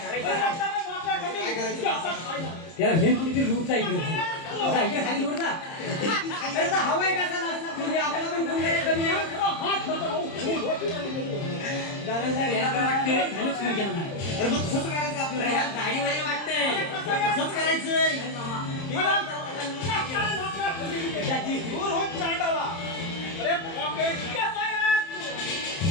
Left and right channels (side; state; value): right; late; 30 ms